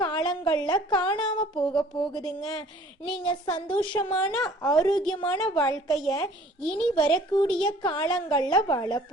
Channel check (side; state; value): both; normal; correlation 0.52